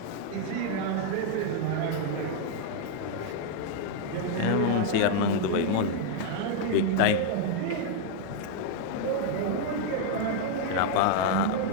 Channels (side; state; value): both; different; correlation 0.00